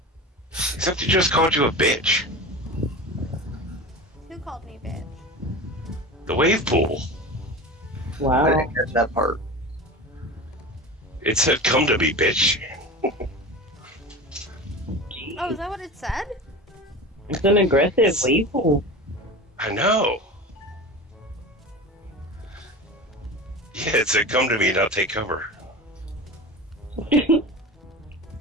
Except he just called you a bitch. Who called me bitch? The wave pool. I Wow. didn't catch that part. It said, "Come to me, bitch." Oh, is that what it said? It's an aggressive weevil. I know. Yeah, it said, "Come to me, now take cover."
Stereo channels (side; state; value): both; normal; correlation 0.31